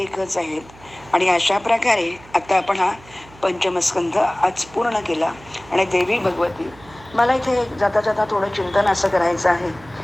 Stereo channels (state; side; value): noise; right; hum, 23 dB below the sound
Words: आहेत. आणि अशा प्रकारे आता आपण हा पंचमस्कंध आज पूर्ण केला. आणि देवी भगवती, मला इथे जाता जाता थोडं चिंतन असं करायचं आहे